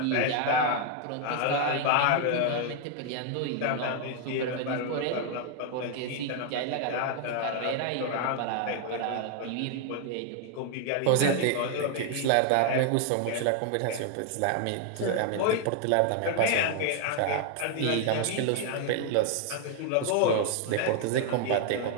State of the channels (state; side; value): different; both; correlation 0.00